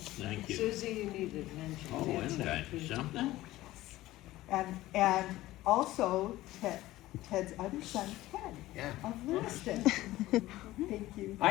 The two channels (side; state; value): right; quieter; 16.6 dB